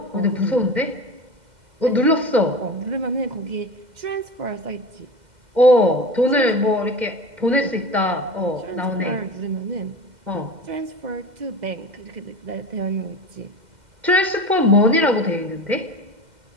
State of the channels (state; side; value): late; left; 2.1 ms